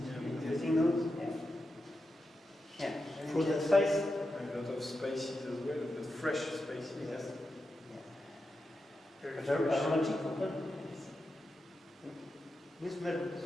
Yeah. Tasting those? Yeah. Fruit and spice? A lot of spices as well, but fresh spices. Yes. Very Very fresh. aromatic. We smell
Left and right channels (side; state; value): both; normal; correlation 0.89